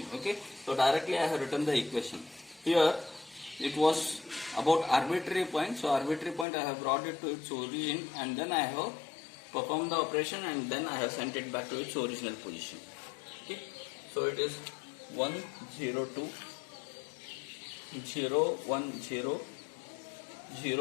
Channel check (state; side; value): drops out; right; at 6.5 s